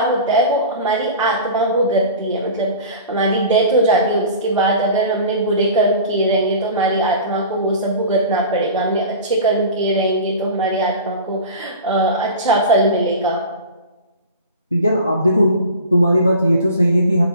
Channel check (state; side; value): inverted; both; correlation -0.37